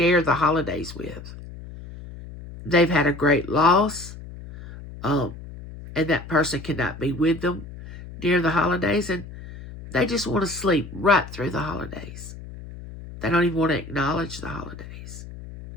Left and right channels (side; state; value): left; noise; hum, 14 dB below the sound